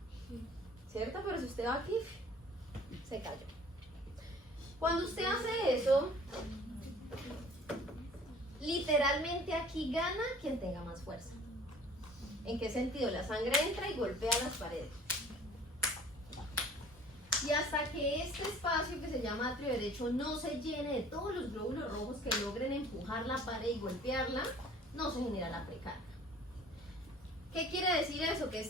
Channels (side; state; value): both; normal; correlation 0.50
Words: ¿cierto? Pero si usted va aquí, se cayó. Cuando usted hace eso, literalmente aquí gana quien tenga más fuerza. ¿En qué sentido? La sangre entra y golpea las paredes. Y hasta que este espacio que se llama atrio derecho no se llene de todos los glóbulos rojos que logren empujar la pared y golpearla, no se genera la precarga. ¿Qué quiere decir eso? Que